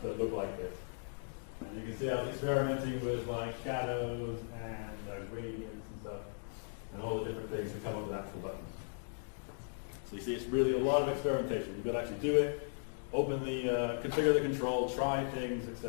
that look like this. And you can see I was experimenting with like shadows and gradients and stuff, and all the different things to come up with actual buttons. So you see, it's really a lot of experimentation. You've got to actually do it, open the, configure the control, try things,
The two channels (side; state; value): right; silent; digital silence